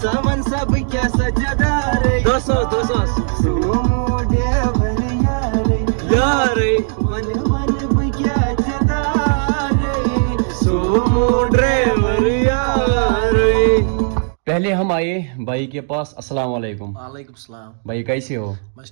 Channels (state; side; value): silent; left; 56 dB below the other